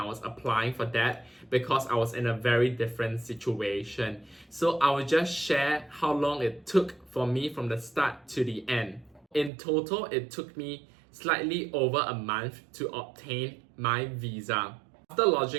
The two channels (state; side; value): drops out; left; at 9.5 s